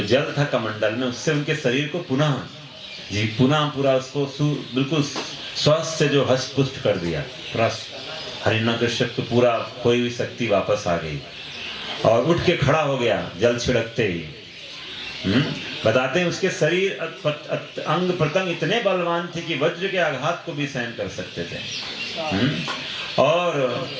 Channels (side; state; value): both; identical; correlation 1.00